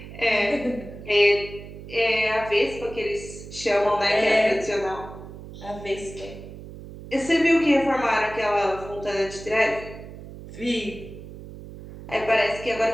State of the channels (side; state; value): right; noise; hum, 14 dB below the sound